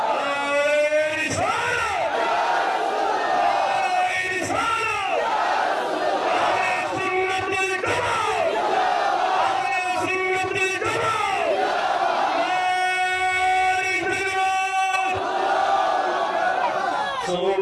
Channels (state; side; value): identical; both; correlation 1.00